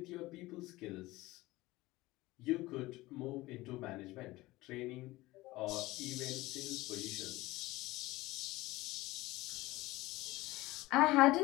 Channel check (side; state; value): right; quieter; 19.3 dB